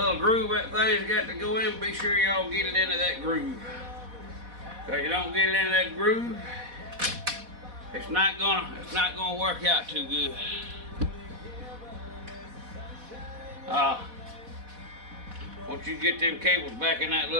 groove that thing's got to go in. Be sure y'all get it into that groove. Cause you don't get it into that groove, it's not gonna work out too good. Once you get them cables back in that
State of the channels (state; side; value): late; left; 4.1 ms